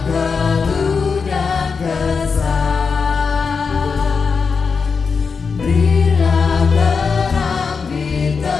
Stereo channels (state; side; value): quieter; right; 5.3 dB